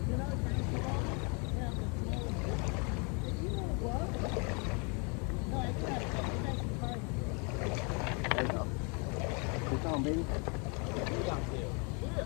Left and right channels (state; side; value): quieter; right; 34.1 dB